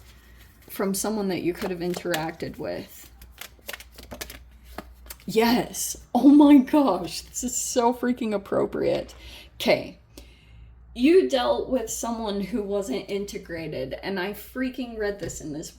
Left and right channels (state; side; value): identical; both; correlation 1.00